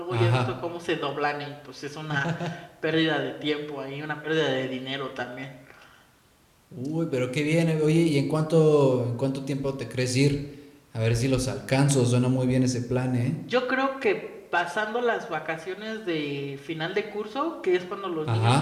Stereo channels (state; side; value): identical; both; correlation 1.00